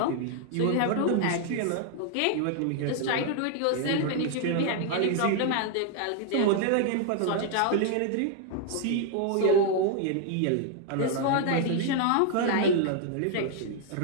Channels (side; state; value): both; different; correlation 0.00